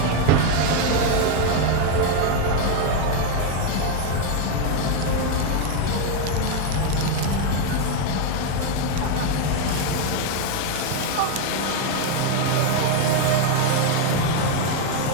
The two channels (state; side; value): different; both; correlation 0.01